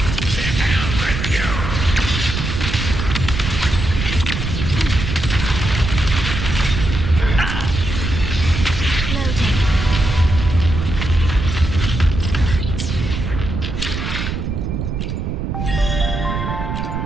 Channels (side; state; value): right; noise; rumble, 3 dB below the sound